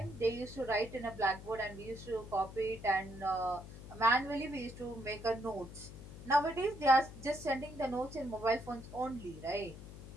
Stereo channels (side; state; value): left; noise; hum, 13 dB below the sound